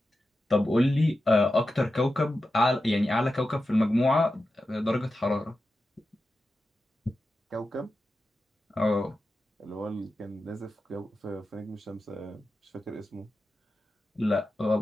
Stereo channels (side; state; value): both; normal; correlation 0.91